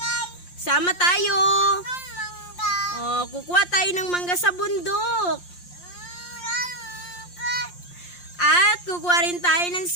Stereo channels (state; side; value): late; right; 5.7 ms